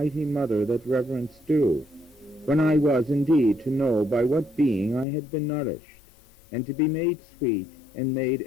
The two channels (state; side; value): drops out; right; at 5.1 s